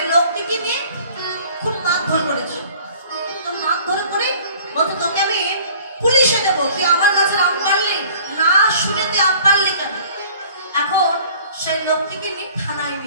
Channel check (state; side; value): inverted; both; correlation -0.50